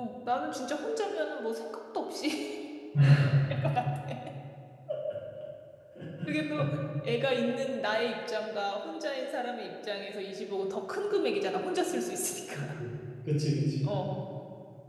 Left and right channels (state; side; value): identical; both; correlation 1.00